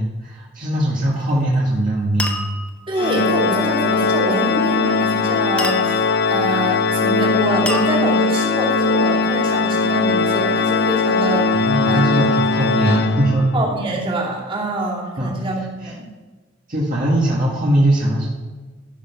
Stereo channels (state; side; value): normal; both; correlation 0.32